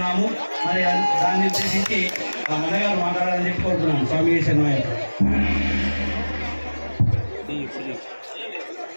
మరి దాన్ని ఉద్దేశించి ఆ అన్నగారు మాట్లాడాలని చెప్పి కోరుతున్నాము. స్వామి శరణమయ్య.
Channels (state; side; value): inverted; both; correlation -1.00